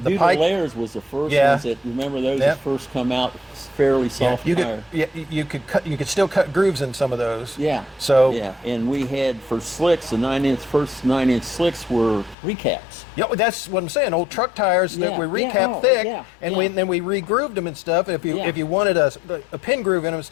pipe. Layers was the first Yeah. ones that, remember those Yeah. that first come out, fairly Yeah, soft you tire. you could still cut grooves in some of those. Yeah. So yeah, and we had for slicks, the first 9-inch slicks were recaps. yeah, that's what I'm saying. Old truck tires that Yeah, we yeah, recapped oh, thick, yeah, and yeah. then we re-grooved them and stuff. If Yeah. you wanted a pin groove in them and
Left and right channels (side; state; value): right; drops out; at 12.4 s